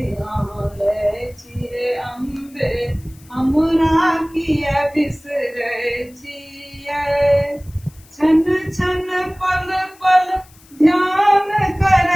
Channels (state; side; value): noise; left; hiss, 26 dB below the sound